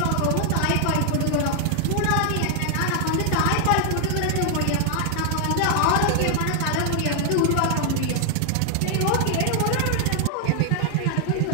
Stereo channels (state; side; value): different; both; correlation 0.00